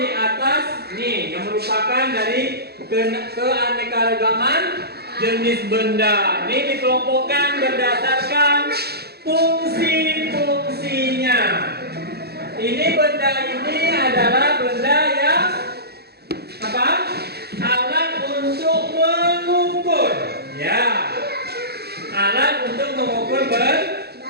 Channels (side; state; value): left; late; 0.47 ms